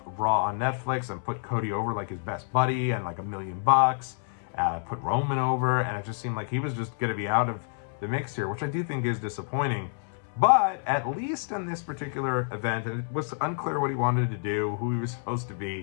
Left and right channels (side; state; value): right; silent; 59 dB below the other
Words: Raw on Netflix and put Cody over like his best buddy and like $1 million, put Roman over, and it just seemed like he was just going to be out of the mix here, which I do think is disappointing. But at least in this particular event, and it was unclear what he wanted to do, who he was supposed to